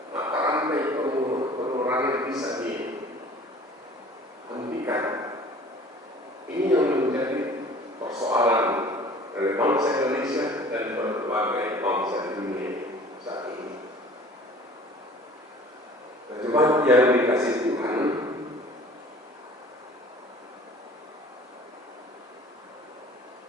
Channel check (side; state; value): both; normal; correlation 0.47